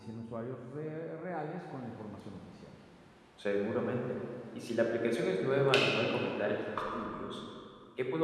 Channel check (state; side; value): identical; both; correlation 1.00